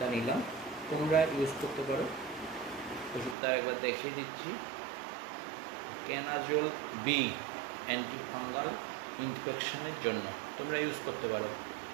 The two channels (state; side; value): drops out; left; at 3.4 s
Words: নিলাম। তোমরা ইউজ করতে পারো। ওষুধটা একবার দেখিয়ে দিচ্ছি, ক্যানাজোল বি, অ্যান্টি ফাঙ্গাল ইনফেকশনের জন্য তোমরা ইউজ করতে পারো।